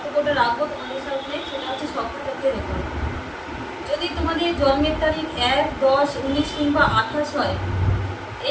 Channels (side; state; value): both; identical; correlation 1.00